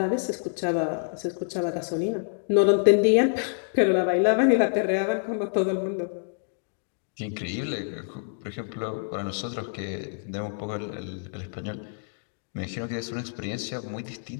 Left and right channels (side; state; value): right; silent; digital silence